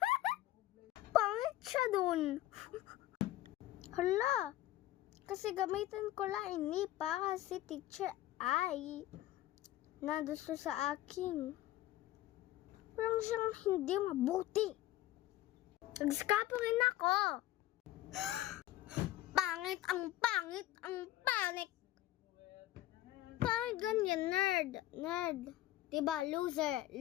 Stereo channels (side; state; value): right; quieter; 14.9 dB